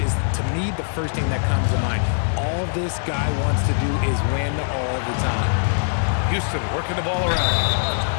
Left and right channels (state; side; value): silent; right; 57 dB below the other